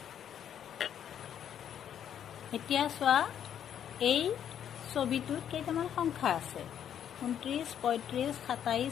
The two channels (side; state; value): right; quieter; 9.5 dB